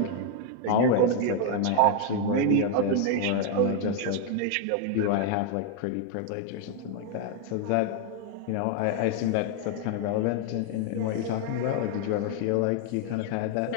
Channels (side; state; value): both; different; correlation 0.00